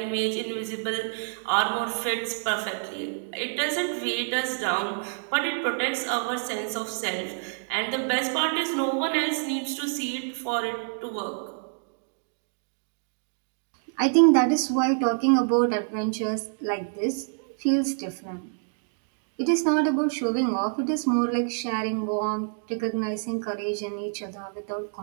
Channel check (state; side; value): silent; left; digital silence